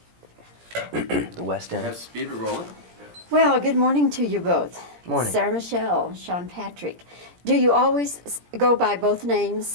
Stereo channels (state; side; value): late; left; 17 ms